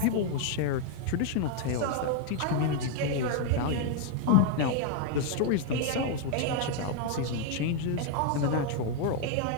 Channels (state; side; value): different; both; correlation 0.00